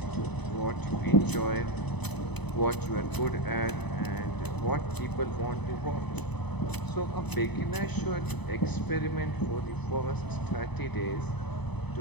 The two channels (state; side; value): late; right; 0.99 ms